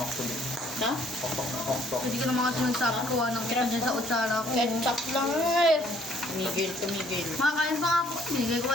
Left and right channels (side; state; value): both; normal; correlation 0.62